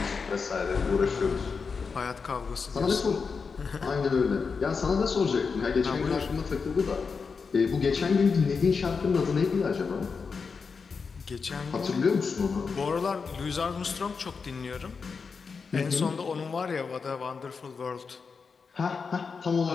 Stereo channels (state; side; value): quieter; right; 5.2 dB